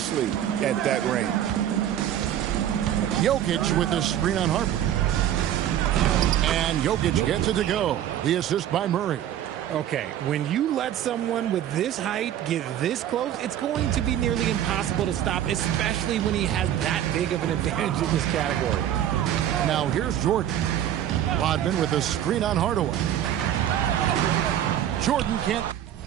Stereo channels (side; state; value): left; quieter; 11.1 dB